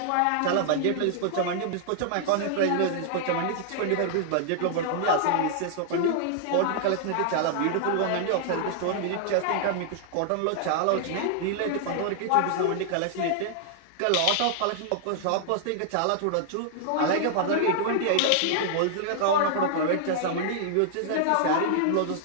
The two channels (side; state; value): both; different; correlation -0.01